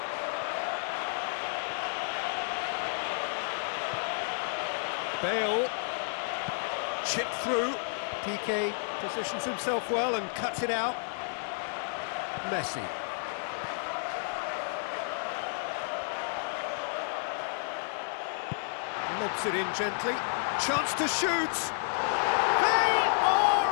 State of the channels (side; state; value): right; silent; digital silence